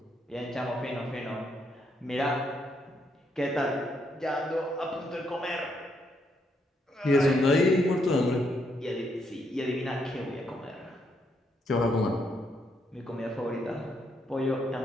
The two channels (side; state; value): both; normal; correlation 0.76